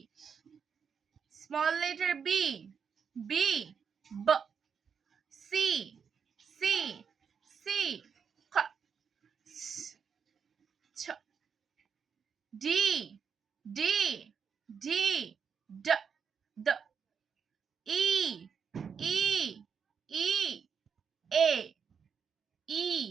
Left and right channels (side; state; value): left; quieter; 6.6 dB